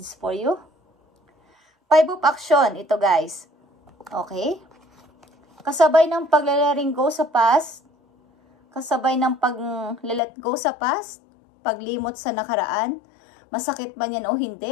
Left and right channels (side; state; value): right; drops out; at 10.2 s